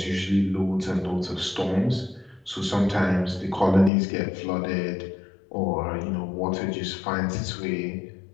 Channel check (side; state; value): right; drops out; at 3.9 s